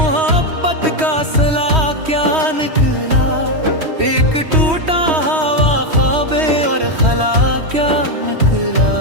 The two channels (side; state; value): left; late; 3.1 ms